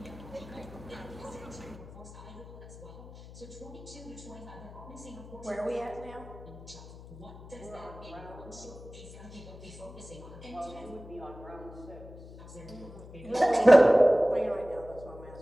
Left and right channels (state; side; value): noise; left; hum, 16 dB below the sound